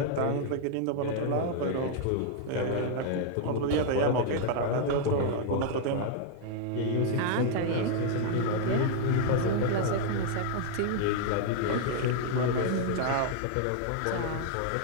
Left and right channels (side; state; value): both; different; correlation 0.00